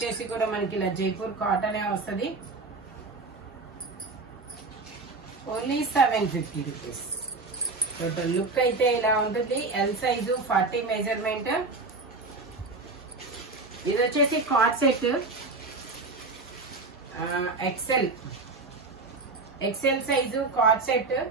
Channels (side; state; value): left; quieter; 3.7 dB